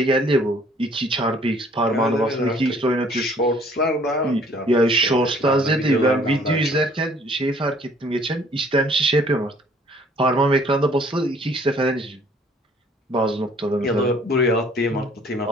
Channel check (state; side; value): normal; both; correlation 0.58